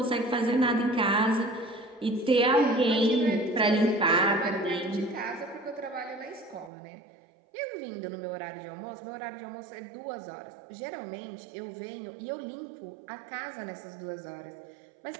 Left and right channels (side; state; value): left; drops out; at 6.7 s